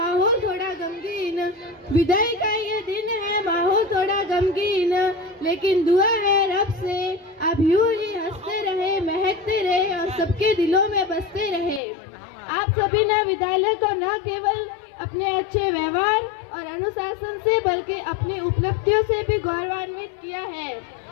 थोड़ा गमगीन, विदाई का ये दिन है माहौल थोड़ा गमगीन, लेकिन दुआ है रब से आप यूं ही हंसते रहे, महकते रहे और सबके दिलों में बसते रहे। आप सभी ने विद्यालय को न केवल अपने अच्छे व्यवहार और अनुशासन से बल्कि अपनी उपलब्धियों से भी गौरवान्वित किया है।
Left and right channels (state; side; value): drops out; right; at 11.8 s